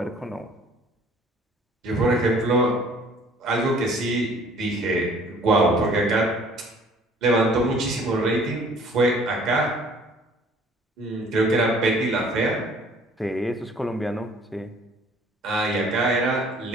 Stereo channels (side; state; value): both; normal; correlation 0.54